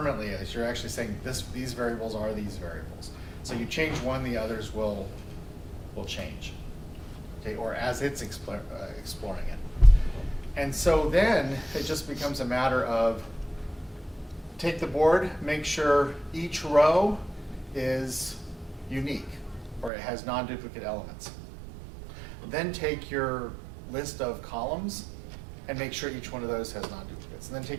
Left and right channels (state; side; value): drops out; left; at 19.9 s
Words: as you're actually saying these variables are these variables. So you change one, the others will change. Okay, or as it's exploring it. And so then it just becomes a matter of take the board, make sure each row is unique or it has non-duplicate elements. Then take your list of columns and make sure each one of those has non-duplicates. And then